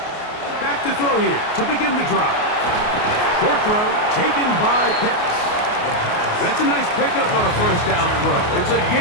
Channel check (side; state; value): right; late; 28 ms